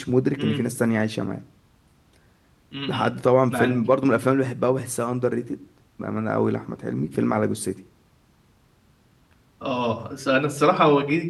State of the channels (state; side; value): identical; both; correlation 1.00